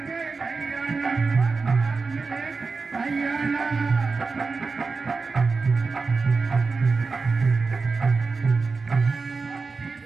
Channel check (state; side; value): quieter; left; 4.4 dB